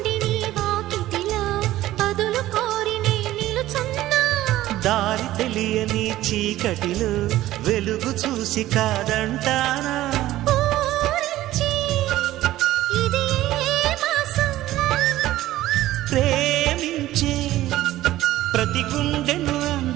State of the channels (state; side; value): quieter; left; 15.1 dB